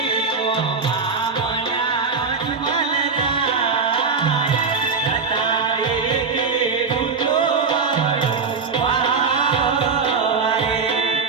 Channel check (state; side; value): quieter; left; 5.1 dB